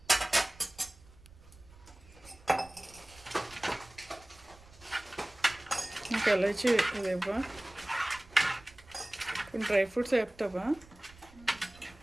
ఇంకా ఎలాచి అదేవా, కొన్ని డ్రై ఫ్రూట్స్ వేపుతావా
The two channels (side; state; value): right; noise; rumble, 23 dB below the sound